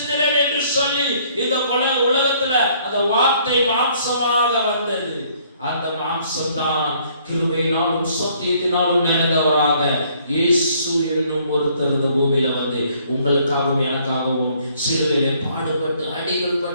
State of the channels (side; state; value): both; inverted; correlation -0.63